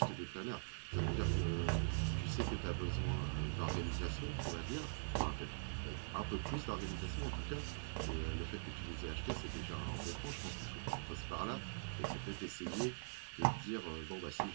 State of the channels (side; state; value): left; silent; digital silence